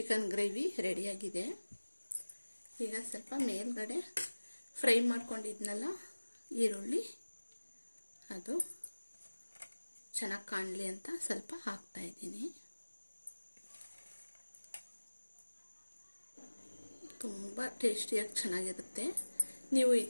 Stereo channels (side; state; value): both; inverted; correlation -1.00